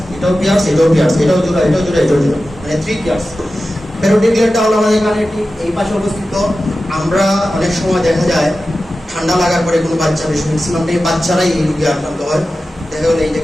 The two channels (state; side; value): normal; both; correlation 0.94